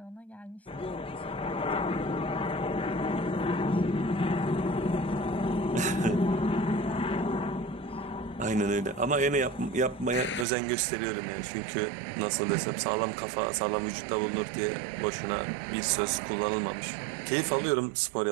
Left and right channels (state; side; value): drops out; left; at 10.5 s